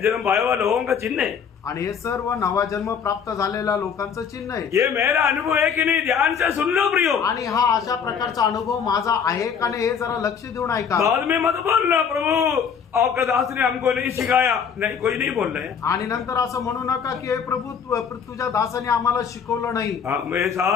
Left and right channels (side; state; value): right; quieter; 7.0 dB